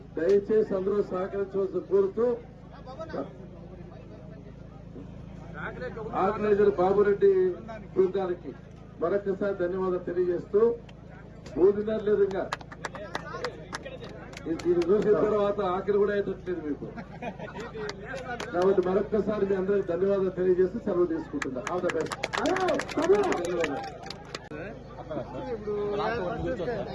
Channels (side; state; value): both; identical; correlation 1.00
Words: దయచేసి అందరూ సహకరించవలసి కోరుతూ ఆర్గనైజర్ బాబురెడ్డి బృందానికి మరొకసారి ధన్యవాదాలు తెలియజేస్తూ మూడున్నర లేదు ఇంకా ఇది చూసిన తర్వాత ఆఖరి కూడా అయ్యేటట్లేదు మీకు. కాబట్టి మరొక్కసారి మీ అందరికి ధన్యవాదాలు తెలియజేస్తూ సెలవు తీసుకుంటున్నా. All the best.